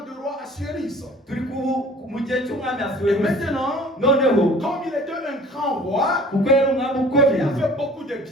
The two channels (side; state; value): both; normal; correlation 0.49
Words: du roi Assuérus. turi mu gihe cy'umwami Et asuwerusi maintenant, noneho comme il était un grand roi, kuko yari umwami il ukomeye a fait beaucoup de